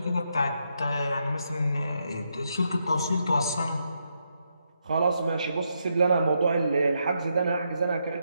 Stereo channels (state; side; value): inverted; both; correlation -0.80